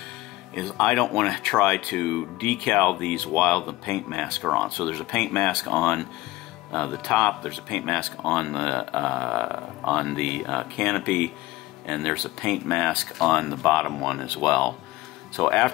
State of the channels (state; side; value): quieter; right; 18.6 dB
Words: is I don't want to try to decal these while the paint masks are on. So there's a paint mask on the top, there's a paint mask on the canopy, and there's a paint mask on the bottom one as well. So